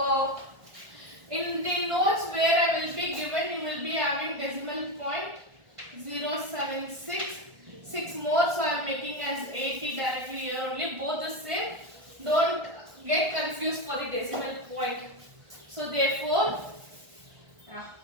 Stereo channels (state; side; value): late; left; 1.5 ms